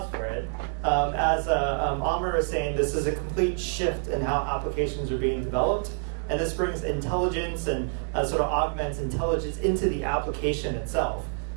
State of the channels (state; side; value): silent; left; digital silence